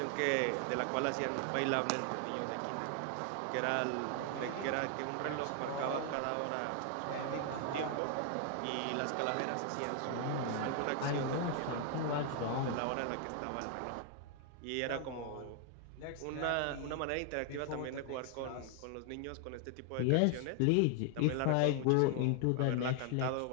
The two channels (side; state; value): both; different; correlation 0.00